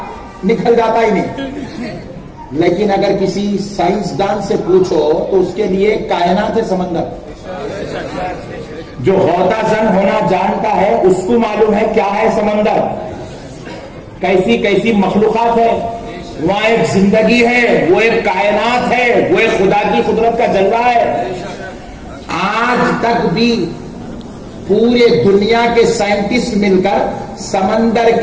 निकल जाता ही नहीं। लेकिन अगर किसी साइंसदान से पूछो तो उसके लिए कायनात है समंदर। जो गौताजन होना जानता है उसको मालूम है क्या है समंदर, कैसी कैसी मखलूकात है वहां। एक जिंदगी है, वो एक कायनात है, वो एक खुदा की कुदरत का जलवा है। आज तक भी पूरे दुनिया के साइंटिस्ट मिलकर समंदर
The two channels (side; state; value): both; identical; correlation 1.00